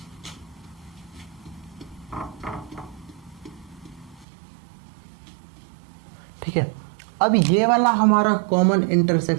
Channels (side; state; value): left; drops out; at 4.2 s